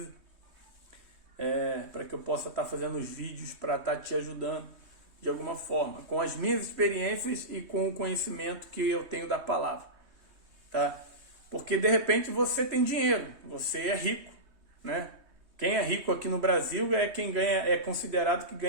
para que eu possa estar fazendo os vídeos para estar te ajudando de alguma forma, com as minhas experiências e com o conhecimento que eu tenho da palavra. Tá? Porque de repente você tem dinheiro, você é rico, né? Quem é rico aqui no Brasil é quem é considerado que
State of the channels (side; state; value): left; late; 3.2 ms